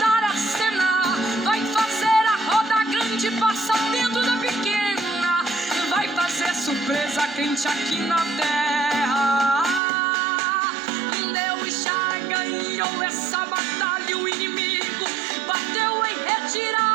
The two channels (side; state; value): left; drops out; at 9.8 s